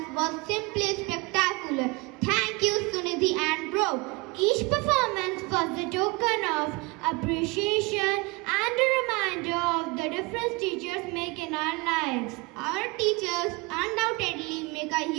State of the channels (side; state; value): left; quieter; 25.7 dB